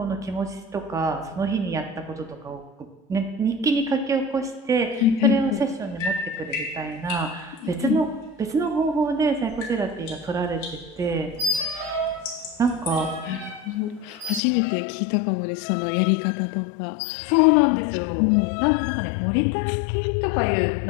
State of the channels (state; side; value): drops out; right; at 14.4 s